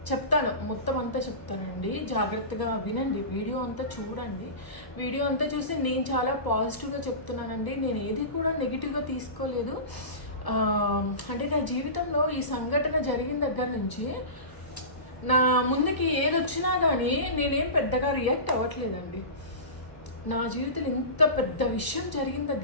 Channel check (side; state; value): right; late; 1.0 ms